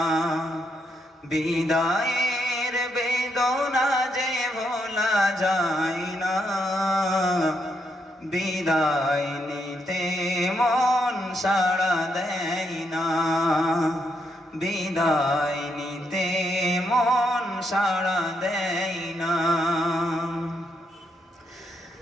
বিদায়ের বেদনা যে ভোলা যায় না, বিদায় নিতে মন সাড়া দেয় না, বিদায় নিতে মন সাড়া দেয় না।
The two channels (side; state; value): both; normal; correlation 0.78